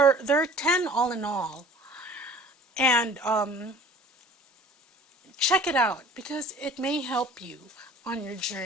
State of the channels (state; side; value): normal; both; correlation 0.47